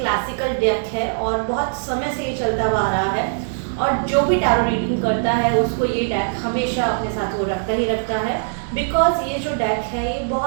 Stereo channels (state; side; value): silent; left; 65 dB below the other